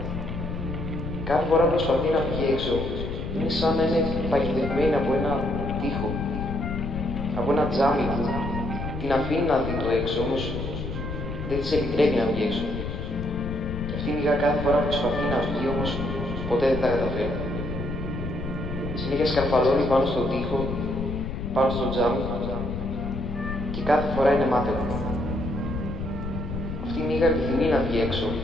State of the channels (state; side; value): noise; left; rumble, 5 dB below the sound